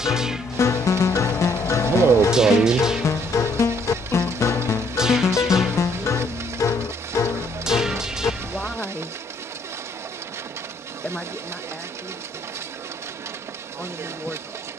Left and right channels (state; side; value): normal; both; correlation 0.67